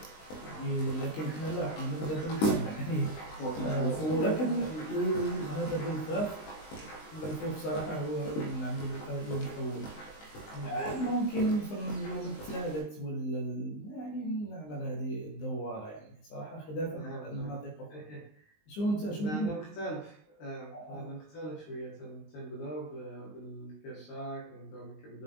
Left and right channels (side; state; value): right; late; 19 ms